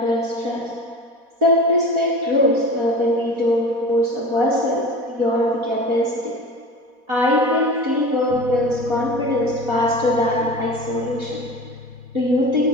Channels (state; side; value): late; left; 4.1 ms